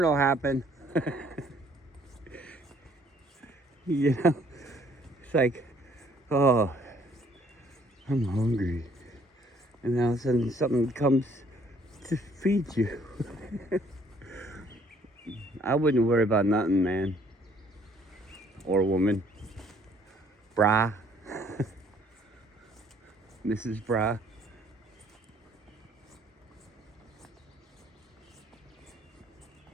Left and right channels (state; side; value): normal; both; correlation 0.62